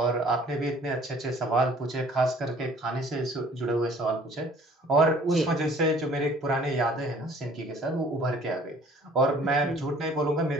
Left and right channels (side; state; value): both; normal; correlation 0.53